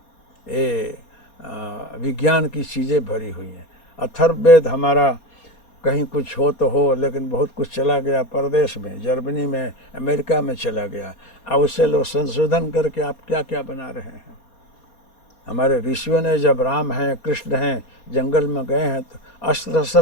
ये विज्ञान की चीज़ें भरी हुई हैं। अथर्ववेद हमारा कहीं कुछ हो तो हो, लेकिन बहुत कुछ चला गया परदेश में, जर्मनी में, अमेरिका में चला गया। अब उससे लोग संशोधन करके आप क्या क्या बना रहे हैं। हमारे ऋषियों ने जब राम हैं, कृष्ण हैं, जंगल में गए हैं तो अस्त्र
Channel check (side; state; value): right; late; 4.2 ms